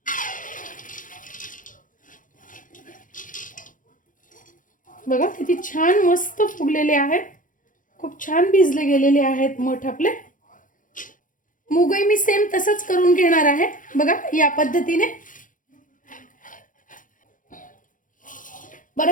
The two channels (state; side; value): late; right; 0.38 ms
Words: बघा किती छान मस्त फुगलेले आहेत, खूप छान भिजले गेलेले आहेत मोठ आपले. मूगही मी सेम तसंच करून घेणार आहे. बघा, या पद्धतीने.